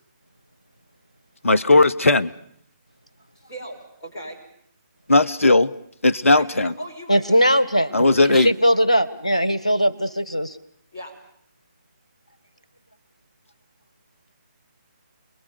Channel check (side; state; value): both; inverted; correlation -0.82